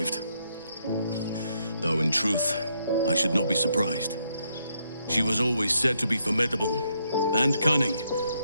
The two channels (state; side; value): inverted; both; correlation -0.76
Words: Though in truth, I should not be surprised. She was always said to be formidable and cunning.